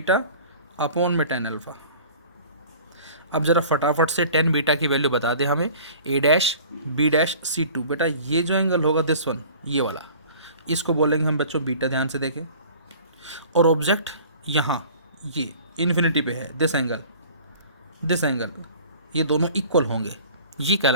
अपॉन में 10 अल्फ़ा। अब ज़रा फटाफट से 10 बीटा की वैल्यू बता दें हमें, A dash B dash C2। बेटा ये जो एंगल होगा दिस वन, ये वाला, इसको बोलेंगे हम बच्चों बीटा, ध्यान से देखें। और ऑब्जेक्ट यहाँ ये इन्फिनिटी पे है, दिस एंगल, ये दोनों इक्वल होंगे, ये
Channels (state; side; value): inverted; both; correlation -0.46